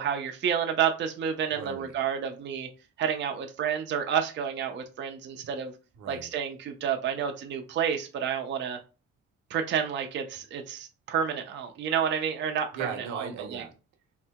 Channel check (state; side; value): quieter; left; 7.7 dB